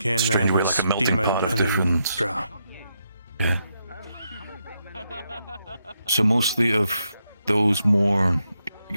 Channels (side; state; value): both; inverted; correlation -0.81